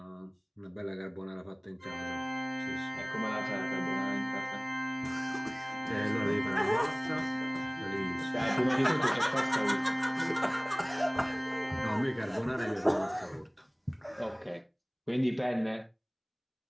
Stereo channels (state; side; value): identical; both; correlation 1.00